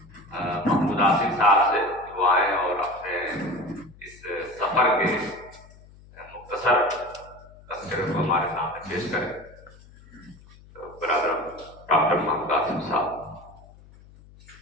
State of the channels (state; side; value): noise; left; hum, 23 dB below the sound